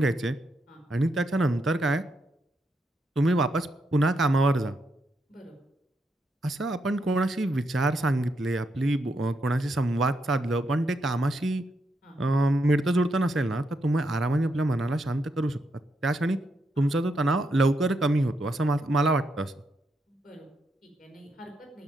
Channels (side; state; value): both; normal; correlation 0.80